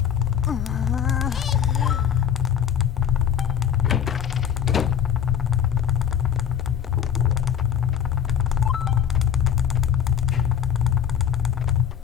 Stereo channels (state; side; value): quieter; right; 8.9 dB